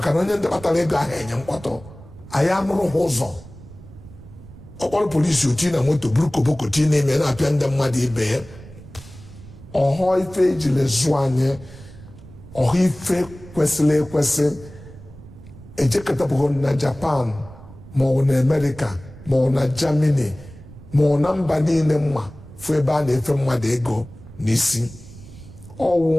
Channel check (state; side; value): noise; right; rumble, 18 dB below the sound